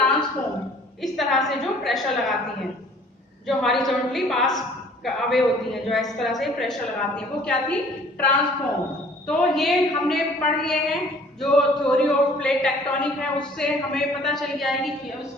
इस तरह से जो प्रेशर लगाती हैं, जो हॉरिजॉन्टली पास अवे होती हैं, जो इस तरह से प्रेशर लगाती हैं, वो क्या थी? ट्रांसफॉर्म। तो ये हमने पढ़ लिए हैं। जो थ्योरी ऑफ प्लेट टेक्टोनिक है उससे हमें पता चल गया है कि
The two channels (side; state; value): both; normal; correlation 0.54